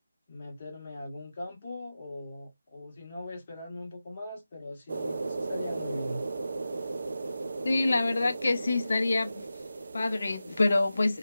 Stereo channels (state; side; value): inverted; both; correlation -0.94